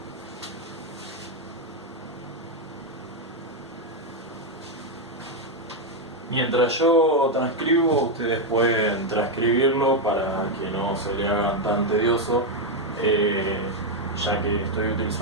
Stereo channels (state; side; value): normal; both; correlation 0.03